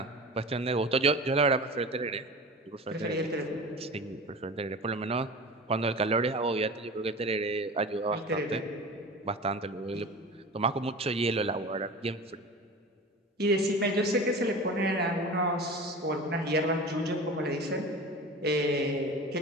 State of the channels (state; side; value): normal; both; correlation 0.34